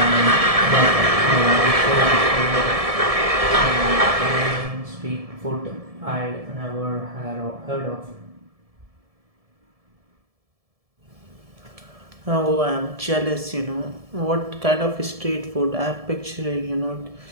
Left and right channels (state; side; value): late; left; 1.7 ms